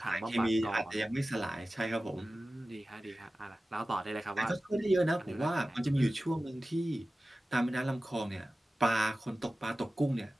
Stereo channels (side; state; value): both; normal; correlation 0.96